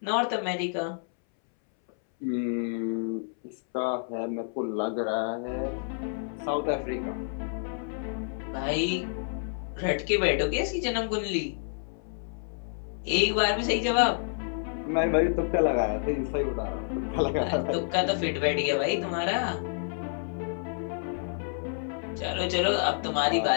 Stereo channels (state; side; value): silent; right; 59 dB below the other